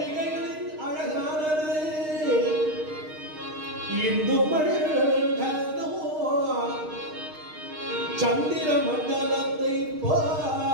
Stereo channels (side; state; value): left; late; 6.5 ms